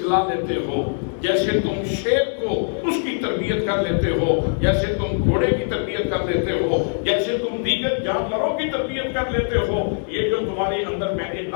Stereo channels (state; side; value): silent; right; 64 dB below the other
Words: لیتے ہو، جیسے تم شیر کو اس کی تربیت کر لیتے ہو، جیسے تم گھوڑے کی تربیت کر لیتے ہو، جیسے تم دیگر جانوروں کی تربیت کر لیتے ہو، یہ جو تمہارے اندر میں نے